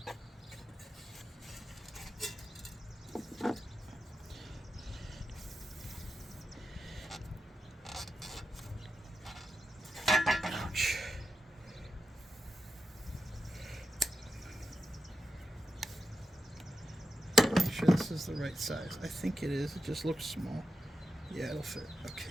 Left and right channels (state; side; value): normal; both; correlation 0.89